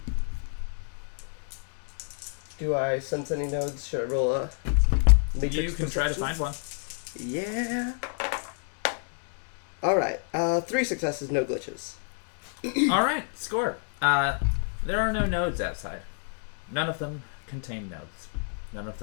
Do I sense any nodes? Should I roll a matrix You can try to perception? find one. Yeah. Alright, 3 successes, no glitches. Alright, score. There are no nodes outside. None of them contain nodes. None of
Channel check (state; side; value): silent; right; 59 dB below the other